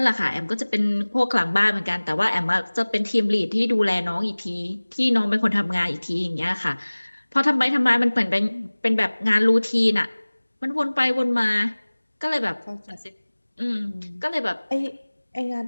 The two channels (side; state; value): both; inverted; correlation -1.00